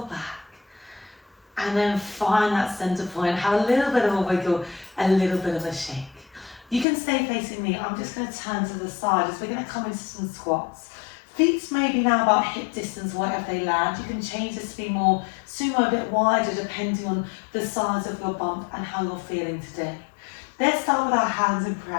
back. And then find that center point. Have a little bit of a wiggle, a little bit of a shake. You can stay facing me. I'm just going to turn to the side as we're going to come into some squats. Feet maybe now about hip distance, wherever they land. You can change this to be more sumo, a bit wider, depending on the size of your bump and how you're feeling today. Let's start with our hands in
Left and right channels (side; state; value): right; drops out; at 6.9 s